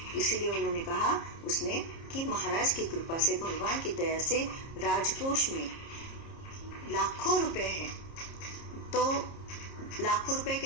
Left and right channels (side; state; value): right; late; 30 ms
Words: इसीलिए उन्होंने कहा, उसने, कि महाराज की कृपा से, भगवान की दया से राजकोष में लाखों रुपए हैं। तो लाखों रुपए